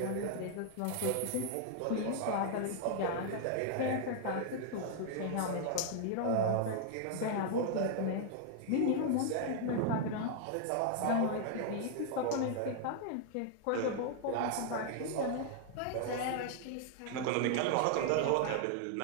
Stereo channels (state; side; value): different; both; correlation -0.01